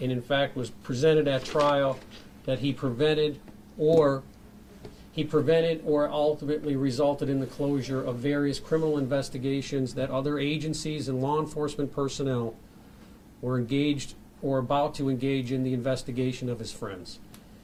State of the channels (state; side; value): identical; both; correlation 1.00